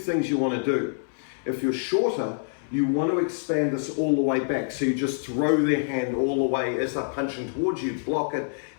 you want to do. If you're shorter, you want to expand this all the way back. So you just throw their hand all the way as they're punching towards you, block it,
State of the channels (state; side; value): silent; right; 58 dB below the other